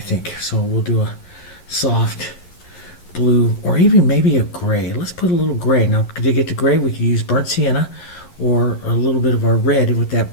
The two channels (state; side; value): late; right; 11 ms